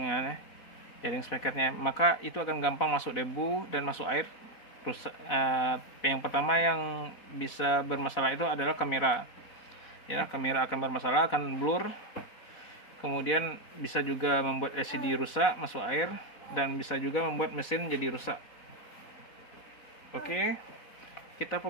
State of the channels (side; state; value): right; late; 4.1 ms